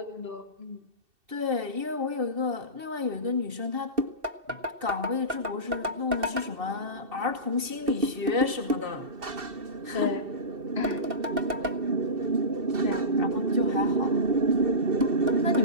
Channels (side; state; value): left; late; 2.7 ms